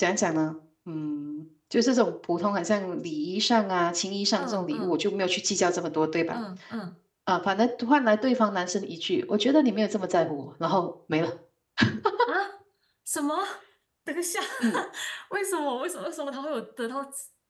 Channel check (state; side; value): identical; both; correlation 1.00